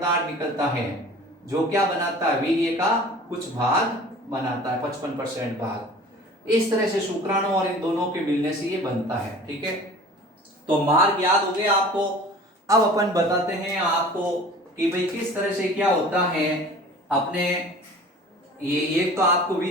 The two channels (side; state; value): both; normal; correlation 0.44